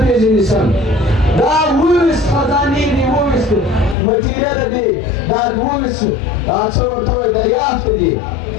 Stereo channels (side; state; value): right; drops out; at 4.0 s